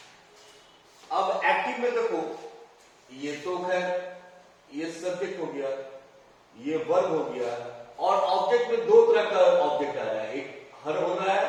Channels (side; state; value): both; identical; correlation 1.00